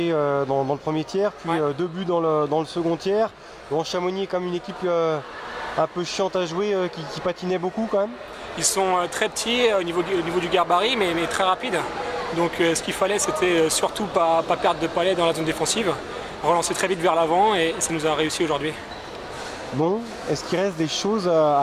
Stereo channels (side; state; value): both; identical; correlation 1.00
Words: dans le premier tiers, puis 2 buts dans le second tiers. Bon, Chamonix est comme une équipe un peu chiante à jouer, qui patinait beaucoup quand même. Ils sont très petits au niveau du gabarit, mais très rapides. Donc ce qu'il fallait, c'était surtout pas perdre de palais dans la zone défensive, relancer très vite vers l'avant et ça nous a réussi aujourd'hui. Bon, est-ce qu'il reste des choses